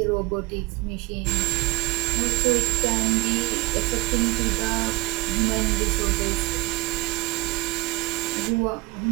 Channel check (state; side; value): quieter; left; 23.0 dB